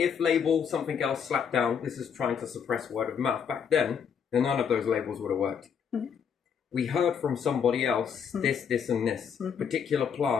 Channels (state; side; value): quieter; right; 7.2 dB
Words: label, something else slapped down. This is trying to suppress word of mouth. Back then, none of those labels would have worked. We heard from somebody else, this and this. Particular